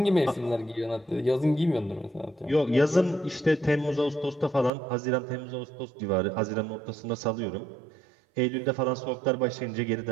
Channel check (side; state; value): left; drops out; at 4.7 s